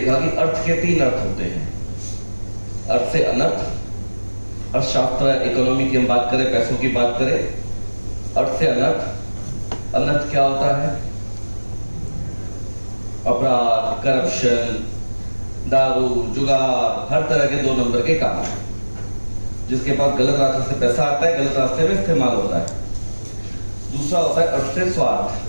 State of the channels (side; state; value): both; inverted; correlation -1.00